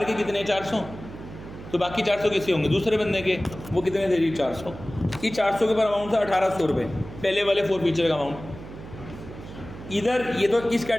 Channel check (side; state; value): right; noise; hum, 14 dB below the sound